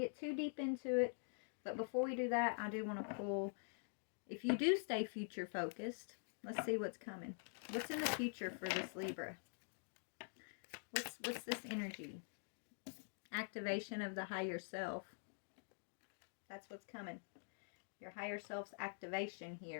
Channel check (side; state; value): right; silent; digital silence